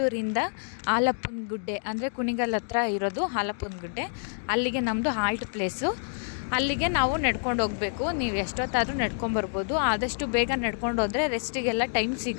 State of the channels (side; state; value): right; silent; digital silence